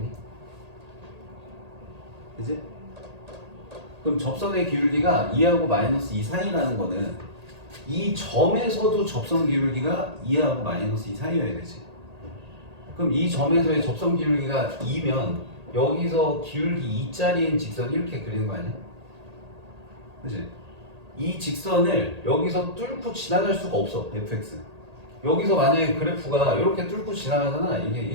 그지? 그럼 접선의 기울기가 2하고 마이너스 2 사이라는 거는 이 점에서도 접선 기울기가 2하고 마이너스 2 사이여야 되지. 그럼 이 점에서의 접선 기울기가 2면 여기서 기울기 2짜리인 직선 이렇게 그리는 거 아니야? 그지? 이 직선을 여기서 뚫고 지나갈 수가 없어, fx. 여기서 만약에 그래프가 이렇게 뚫고 지나가잖아. 이게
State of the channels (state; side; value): late; left; 1.8 ms